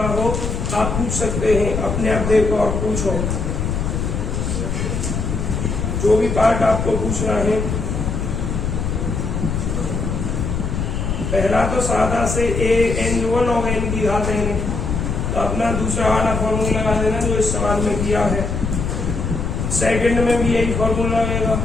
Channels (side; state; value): left; noise; rumble, 2 dB below the sound